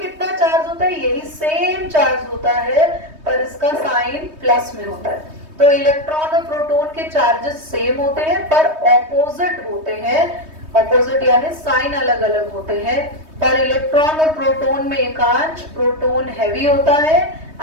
चार्ज होता है? यही सेम चार्ज होता है पर इसका साइन प्लस में होता है। तो इलेक्ट्रॉन और प्रोटॉन के चार्जेस सेम होते हैं पर ऑपोजिट होते हैं। ऑपोजिट यानी साइन अलग अलग होते हैं। पर इलेक्ट्रॉन और प्रोटॉन में एकांश, प्रोटॉन हैवी होता है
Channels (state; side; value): late; left; 3.2 ms